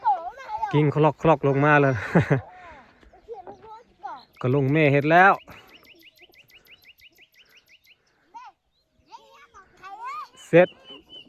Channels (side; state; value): both; identical; correlation 1.00